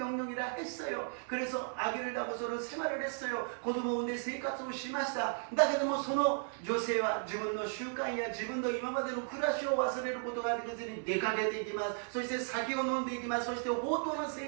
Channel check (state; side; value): silent; left; 54 dB below the other